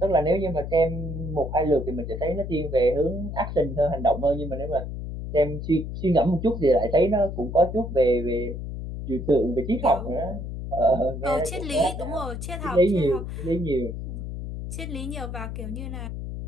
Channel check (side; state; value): left; noise; hum, 7 dB below the sound